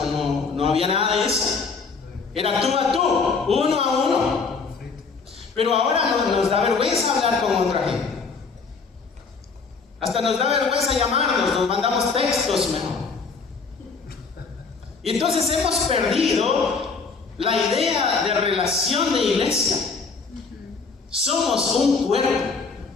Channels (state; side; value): quieter; right; 4.8 dB